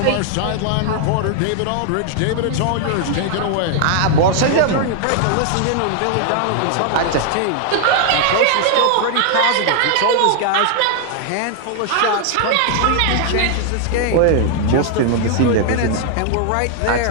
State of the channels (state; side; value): different; both; correlation 0.00